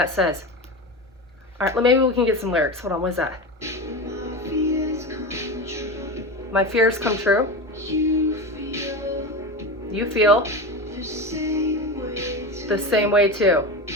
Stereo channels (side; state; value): both; normal; correlation 0.24